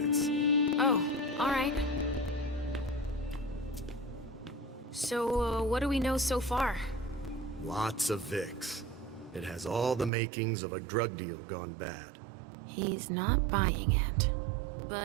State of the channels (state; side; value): drops out; left; at 10.1 s